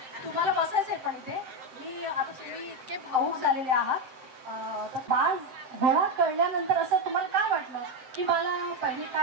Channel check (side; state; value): left; late; 7.9 ms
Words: तुम्हाला बसायचंय पण इथे. मी आता तुम्ही इतके भावूक झालेले आहात. तर बाळ होळा कळल्यानंतर असं तुम्हाला काय वाटलं की मला पहिले